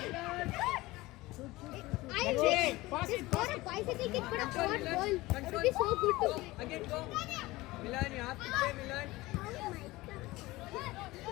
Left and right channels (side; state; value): right; quieter; 19.8 dB